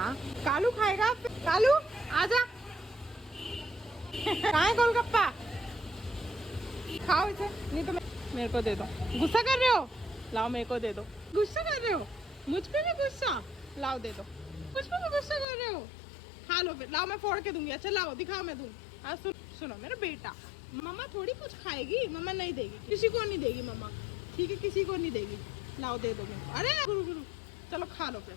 कालू खाएगा। कालू आजा, कहाँ है गोलगप्पा? खाओ इसे, नहीं तो मेरे को दे दो। गुस्सा कर रहे हो? लाओ मेरे को दे दो। गुस्सा कर रहे हो? मुझ पे भी गुस्सा? लाओ दे दो। मुझ पे भी गुस्सा कर रहे हो? खा लो फिर। लाओ मैं फोड़ के दूंगी। अच्छा लाओ, दिखाओ, मैं दूँ। आज सुनो मेरा बेटा, मम्मा थोड़ी कुछ खाएगी, मम्मा नहीं देगी, किसी को नहीं देगी मम्मा, ठीक है? किसी को नहीं देगी। लाओ दे दो मेरे को। अरे गुरु गुरु, चलो खा लो फिर,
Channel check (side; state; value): right; drops out; at 15.5 s